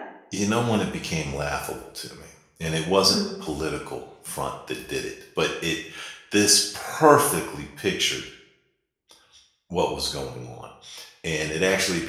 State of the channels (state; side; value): identical; both; correlation 1.00